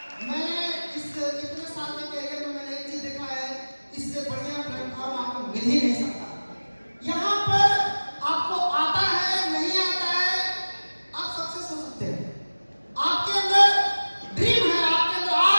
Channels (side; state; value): both; inverted; correlation -1.00